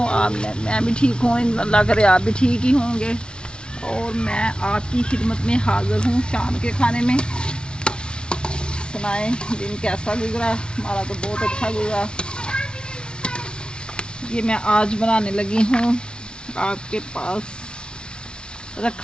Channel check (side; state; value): right; late; 0.055 ms